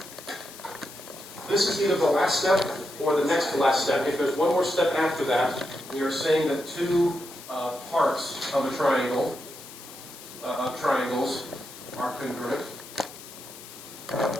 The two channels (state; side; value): noise; left; hiss, 16 dB below the sound